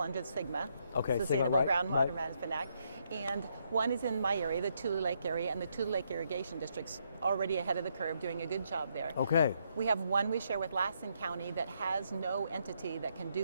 under SGMA, Sustainable Groundwater Management Act. And one is in my area, the Tule Lake area, and the Tule Lake Irrigation District's already ahead of the curve, doing a good job there. Okay. We have one we share with Lassen County that has no entity that can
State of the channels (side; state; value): both; inverted; correlation -0.76